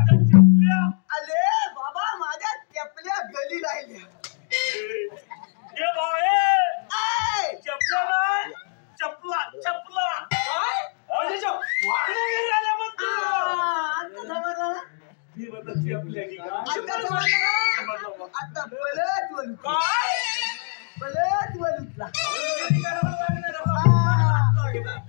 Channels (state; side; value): silent; right; 63 dB below the other